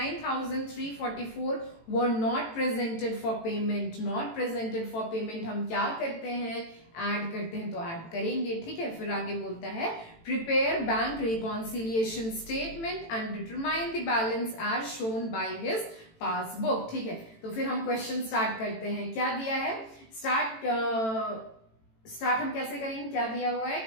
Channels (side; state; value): right; late; 18 ms